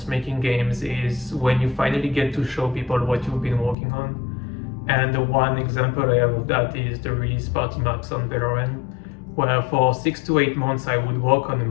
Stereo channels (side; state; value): right; drops out; at 3.8 s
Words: making games is when you finally get to show people what you've been working on. And the one example I have of that is the release party maps on Valorant, where for 6 to 8 months I would work on a